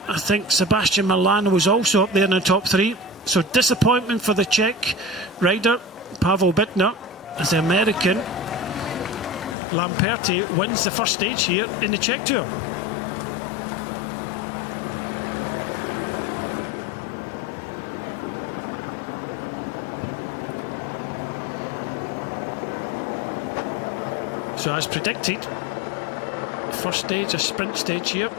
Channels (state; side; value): drops out; right; at 9.6 s